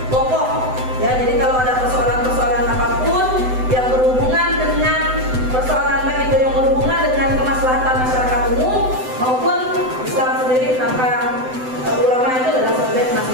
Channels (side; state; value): left; late; 7.9 ms